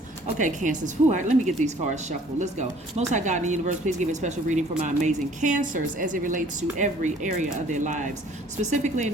Okay, Cancers, all right, let me get these cards shuffled. Let's go. Most High God in the universe, please give a special reading for my amazing Cancers as it relates to every area of their lives, specifically in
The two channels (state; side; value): normal; both; correlation 0.55